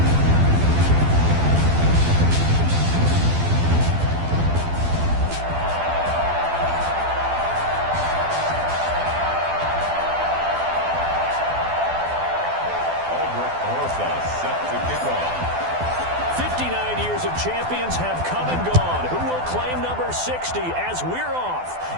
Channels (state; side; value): late; left; 12 ms